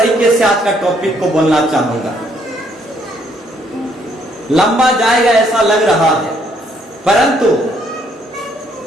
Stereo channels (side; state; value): both; normal; correlation 0.69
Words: से आज का टॉपिक को बोलना चाहूंगा, लंबा जाएगा ऐसा लग रहा है, परंतु